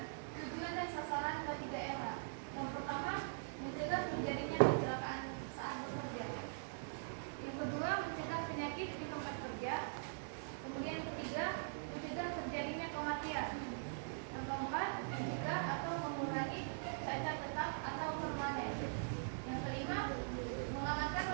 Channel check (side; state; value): left; silent; digital silence